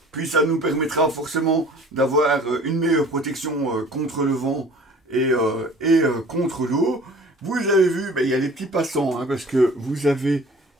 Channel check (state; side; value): normal; both; correlation 0.48